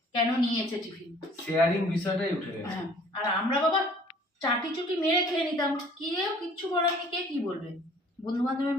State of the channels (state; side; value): normal; both; correlation 0.53